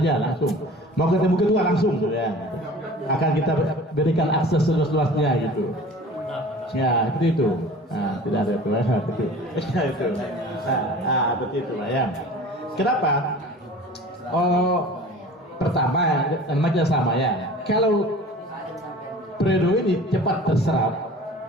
mau ketemu ketua langsung ya. Akan kita berikan akses seluas-luasnya gitu ya, seperti itu. Tidak ada itu seperti itu ya. Kenapa? Pertama namanya sama ya, kalau periode ini cepat terserap,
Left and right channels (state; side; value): normal; both; correlation 0.42